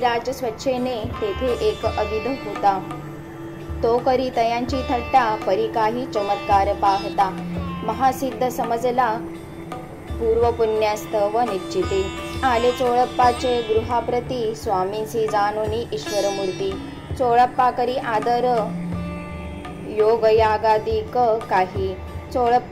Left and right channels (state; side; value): identical; both; correlation 1.00